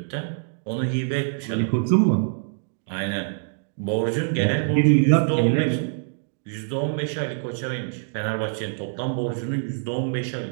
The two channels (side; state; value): left; silent; digital silence